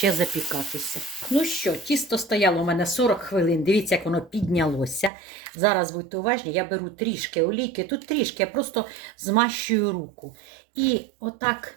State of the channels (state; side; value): drops out; left; at 5.1 s